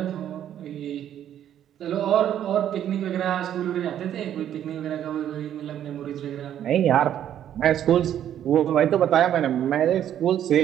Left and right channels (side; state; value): left; quieter; 10.5 dB